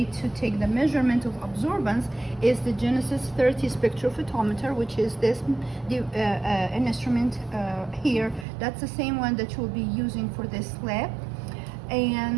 to take the measurement of absorbance is the Genesis 30 spectrophotometer, which is this instrument here. That's the same one that we'll be using for this lab.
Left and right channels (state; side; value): drops out; left; at 8.5 s